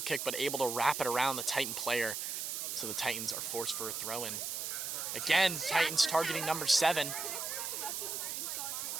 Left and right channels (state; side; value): noise; right; hiss, 3 dB below the sound